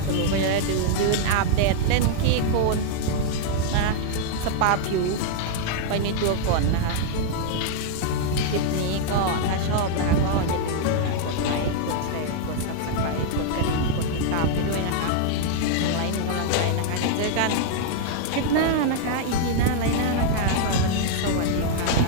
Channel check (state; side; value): different; both; correlation -0.01